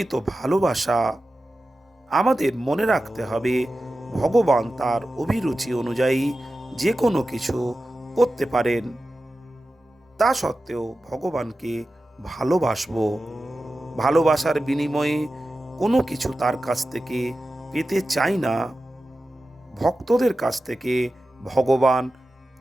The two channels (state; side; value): normal; both; correlation 0.93